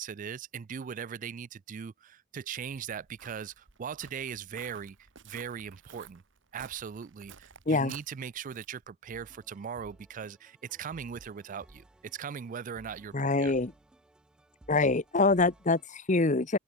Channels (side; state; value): both; normal; correlation 0.16